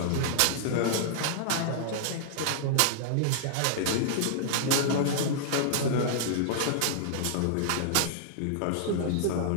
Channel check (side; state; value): both; different; correlation -0.01